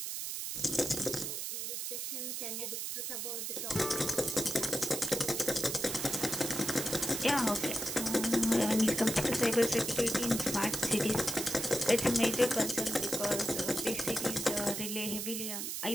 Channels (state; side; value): noise; right; hiss, 4 dB below the sound